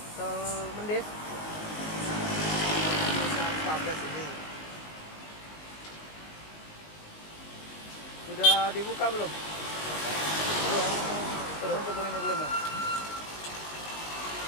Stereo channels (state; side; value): late; right; 19 ms